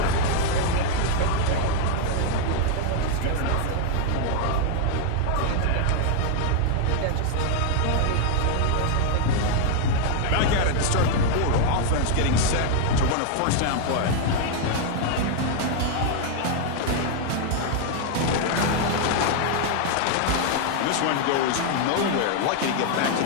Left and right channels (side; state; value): both; different; correlation 0.00